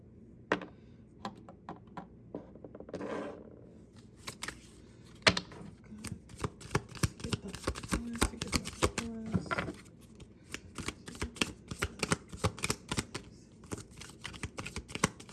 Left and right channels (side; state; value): both; identical; correlation 1.00